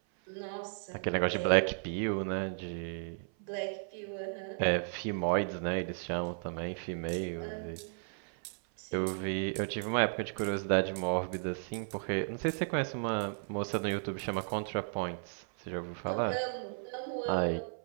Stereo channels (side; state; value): left; silent; 55 dB below the other